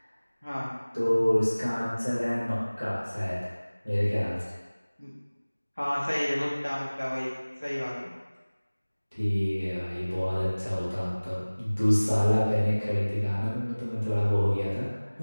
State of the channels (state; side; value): inverted; both; correlation -1.00